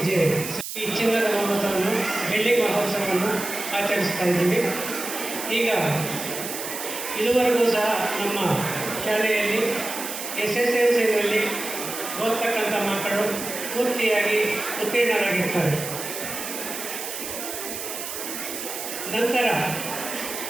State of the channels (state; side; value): noise; right; hiss, 7 dB below the sound